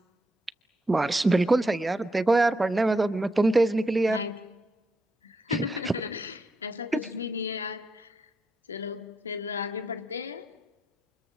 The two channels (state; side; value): normal; both; correlation 0.82